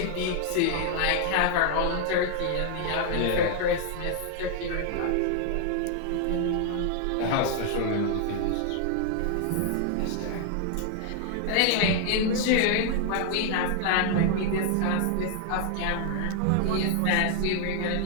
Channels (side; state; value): both; different; correlation 0.00